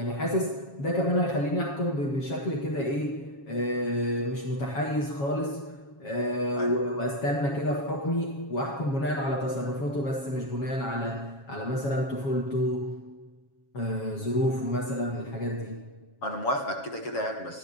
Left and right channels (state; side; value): late; right; 7.3 ms